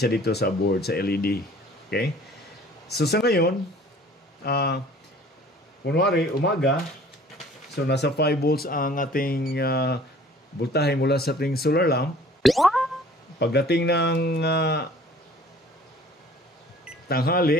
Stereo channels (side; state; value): both; normal; correlation 0.51